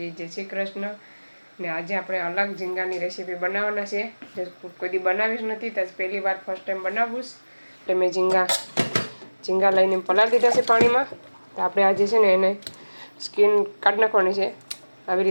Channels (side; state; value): both; inverted; correlation -1.00